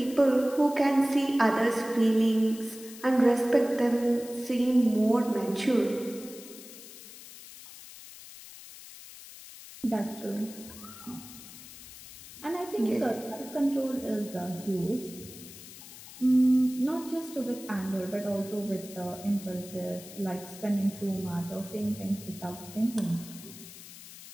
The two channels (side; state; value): left; noise; hiss, 16 dB below the sound